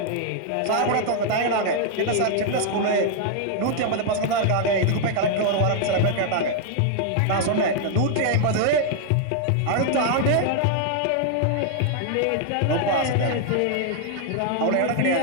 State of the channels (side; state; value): both; different; correlation 0.00